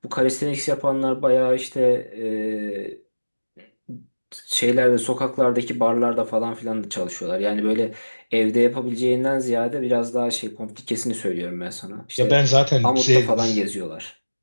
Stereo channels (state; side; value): inverted; both; correlation -1.00